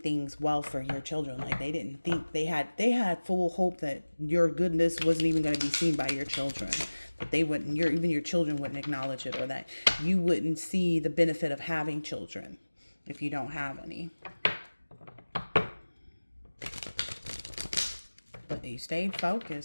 well for your children. Like, they didn't think they had full hope that your goodness wasn't even going to be seen by your children, that they wouldn't, even your children wouldn't acknowledge it, or that you wouldn't see the benefit of having children if you don't have any. But you stayed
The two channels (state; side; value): inverted; both; correlation -1.00